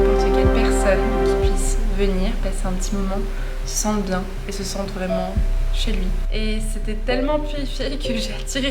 quelle personne qui puisse venir passer un petit moment se sente bien et se sente vraiment chez lui. Et c'était tellement purifié que j'ai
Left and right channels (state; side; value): identical; both; correlation 1.00